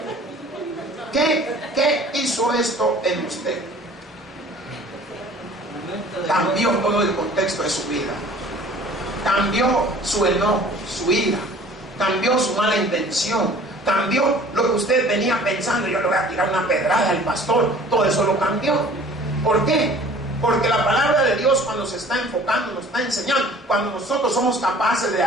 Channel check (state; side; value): normal; both; correlation 0.49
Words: ¿Qué hizo esto en usted? Cambió todo el contexto de su vida. Cambió su enojo, su ira. Cambió su mala intención. Cambió lo que usted venía pensando: yo le voy a tirar una pedrada al pastor. Todo eso lo cambió. ¿Por qué? Porque la palabra de Dios, cuando se está enfocando, nos está enseñando, cuando nosotros somos capaces de